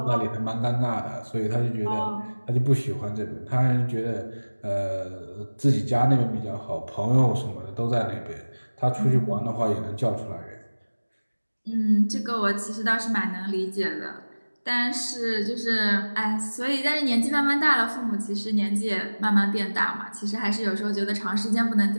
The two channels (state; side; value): inverted; both; correlation -1.00